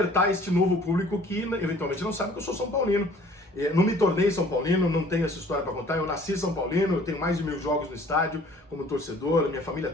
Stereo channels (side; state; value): both; normal; correlation 0.53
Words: este novo público que eventualmente não sabe que eu sou São Paulino. Não me tornei São Paulino, não tenho essa história para contar, eu nasci São Paulino, eu tenho mais de 1000 jogos no estádio como torcedor, minha família